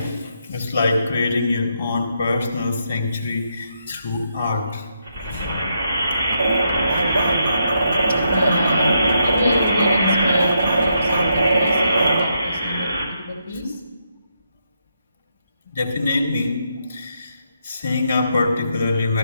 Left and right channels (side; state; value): both; inverted; correlation -0.79